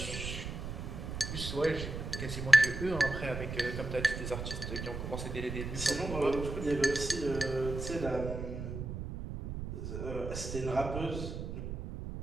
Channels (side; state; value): right; noise; rumble, 6 dB below the sound